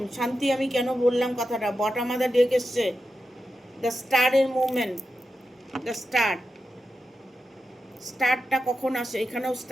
শান্তি আমি কেন বললাম কথাটা, বটম অফ দ্য ডেক এসছে দ্য স্টারের মুভমেন্ট, দ্য স্টারটা কখন আসে? এখানেও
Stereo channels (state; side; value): normal; both; correlation 0.89